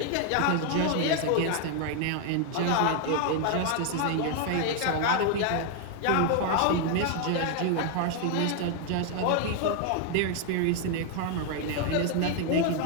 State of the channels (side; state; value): both; different; correlation 0.00